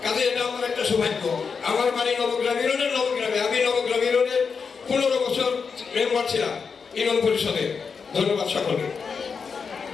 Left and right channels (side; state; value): right; quieter; 5.6 dB